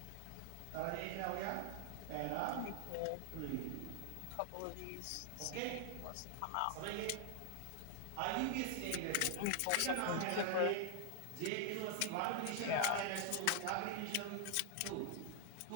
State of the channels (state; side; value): different; both; correlation 0.00